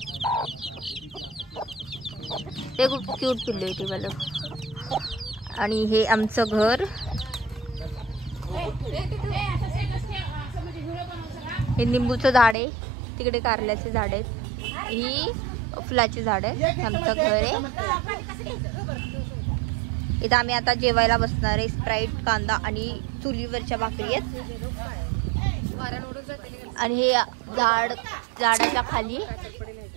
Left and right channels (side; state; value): left; drops out; at 12.6 s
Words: ते खूप क्यूट पिल्लू आहे ते वालं। आणि हे आमचं घर। हे निंबूचं झाड आहे, तिकडे कारल्याचे झाड आहेत, ही फुलाची झाड आहे। आमचं घर आहे। इथं आम्ही आता जेवायला बसणार आहे। स्प्राईट, कांदा आणि चुलीवरच्या भाकरी आहेत। आणि हे झाडाच्या खाली